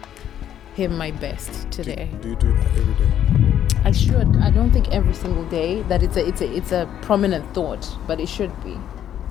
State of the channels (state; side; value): quieter; right; 10.4 dB